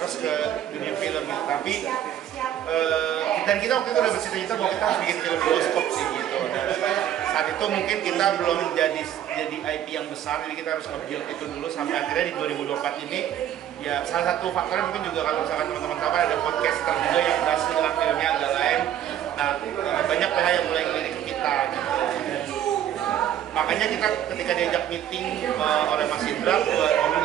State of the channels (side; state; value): left; quieter; 10.9 dB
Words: ke dunia film gitu. Tapi dan kita waktu itu udah bercita-cita bahwa kita harus bikin film bioskop sih gitu. Dan saat itu mungkin kita belum jadi IP yang besar, jadi kita harus nge-build itu dulu sampai akhirnya di 2024 ini ya salah satu faktornya mungkin juga kalau misalkan teman-teman tahu ada podcaster juga yang berhasil dengan filmnya agak lain. Nah, banyak PH yang mulai ngelirik ke kita gitu. Makanya kita ketika diajak meeting oleh Mas Indra buat